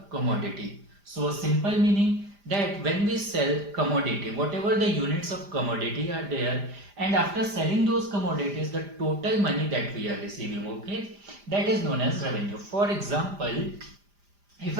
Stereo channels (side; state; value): left; late; 5.0 ms